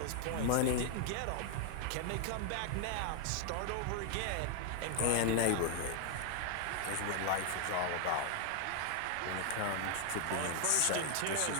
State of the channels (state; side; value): different; both; correlation 0.00